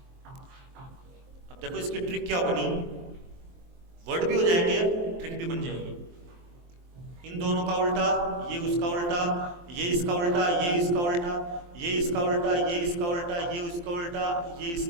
अब देखो इसकी ट्रिक क्या बनी, वर्ड भी हो जाएंगे, ट्रिक भी बन जाएगी। इन दोनों का उल्टा, ये उसका उल्टा, ये इसका उल्टा, ये इसका उल्टा, ये इसका उल्टा, ये इसका उल्टा, ये उसका उल्टा, ये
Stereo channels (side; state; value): left; late; 23 ms